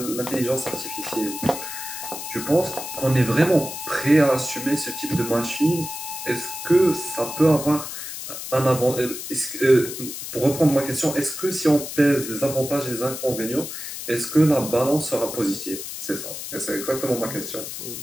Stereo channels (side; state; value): left; noise; hiss, 8 dB below the sound